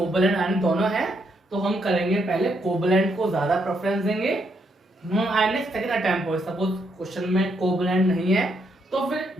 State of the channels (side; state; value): both; normal; correlation 0.76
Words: आयनिक दोनों है तो हम करेंगे पहले कोवलेंट को ज्यादा प्रेफरेंस देंगे। नॉन आयनिक सेकंड अटेम्प्ट हो, सपोज क्वेश्चन में कोवलेंट नहीं है तो फिर